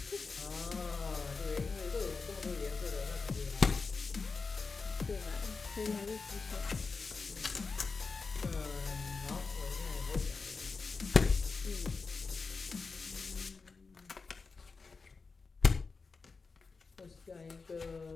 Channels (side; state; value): right; quieter; 4.5 dB